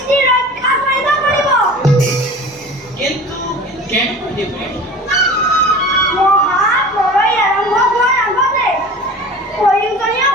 ৰক্ষা কৰিব পাৰিব। কিন্তু কেনেকৈ দেৱৰী? মহাপ্ৰলয় আৰম্ভ হোৱাৰ আগতে প্ৰয়োজনীয়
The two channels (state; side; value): normal; both; correlation 0.39